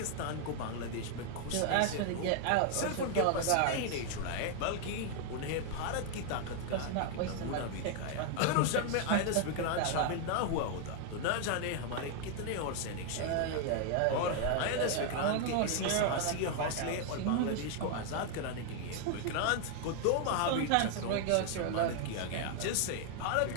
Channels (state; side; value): different; both; correlation 0.00